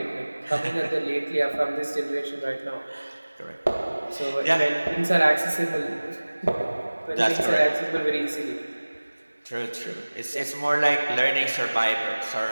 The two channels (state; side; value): inverted; both; correlation -1.00